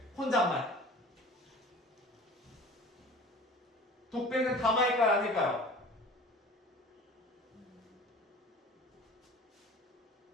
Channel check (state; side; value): normal; both; correlation 0.42